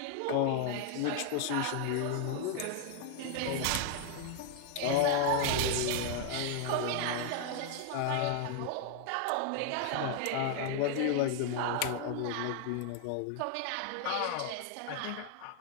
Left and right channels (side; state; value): both; different; correlation 0.00